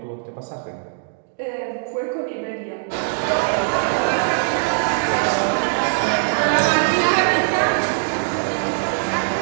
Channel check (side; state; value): left; silent; digital silence